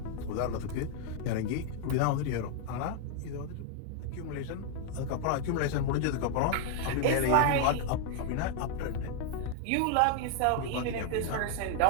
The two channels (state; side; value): different; both; correlation 0.00